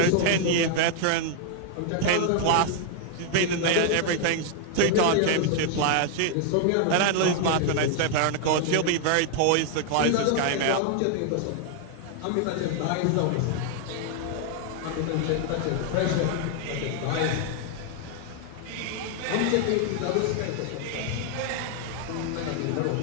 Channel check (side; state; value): both; different; correlation 0.00